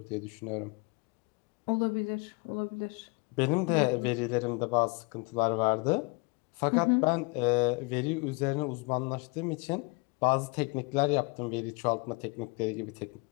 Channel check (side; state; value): right; quieter; 28.6 dB